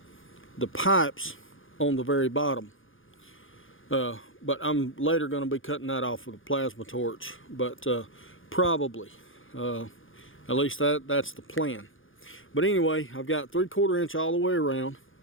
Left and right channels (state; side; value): late; right; 0.58 ms